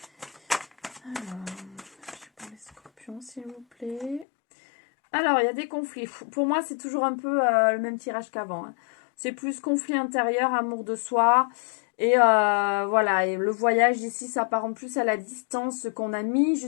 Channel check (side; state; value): right; drops out; at 4.2 s